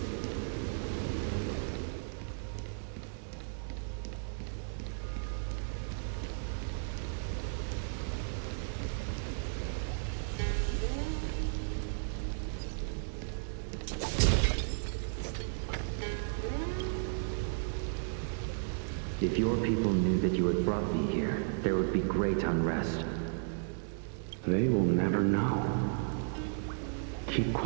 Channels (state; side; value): silent; left; digital silence